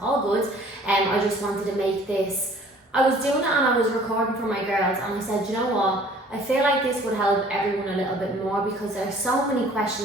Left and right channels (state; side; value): normal; both; correlation 0.53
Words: all good. I just wanted to make this, I was doing it and I was recording for my girls, and I said, you know what, I feel like this would help everyone a little bit more, because there's so many